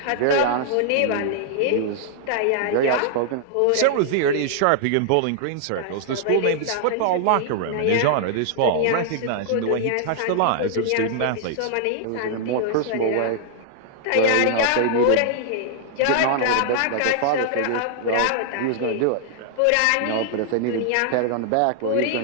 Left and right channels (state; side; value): different; both; correlation -0.01